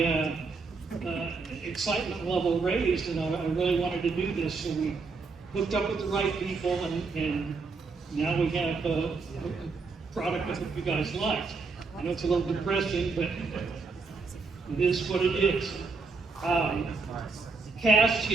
excitement level raised, and I really wanted to do this. So we hooked up with the right people, and now we have a product that you guys like. I know it's a little depressing, but it is what it is. Cast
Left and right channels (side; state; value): left; quieter; 4.3 dB